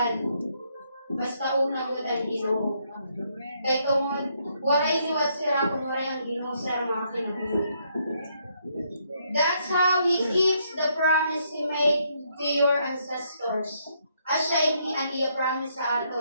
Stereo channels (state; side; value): inverted; both; correlation -0.73